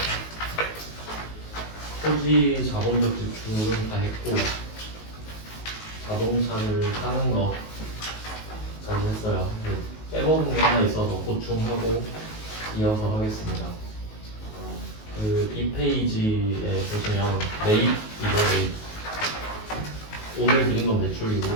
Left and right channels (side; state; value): right; late; 19 ms